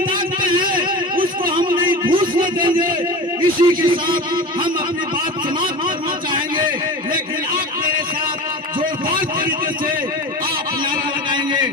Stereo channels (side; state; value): both; normal; correlation 0.31